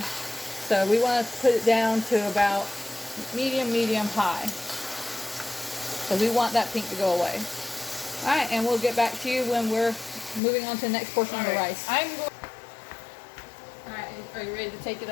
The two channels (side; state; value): right; drops out; at 10.4 s